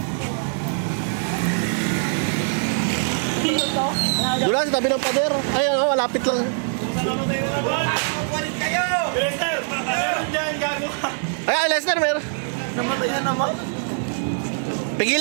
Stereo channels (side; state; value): left; silent; digital silence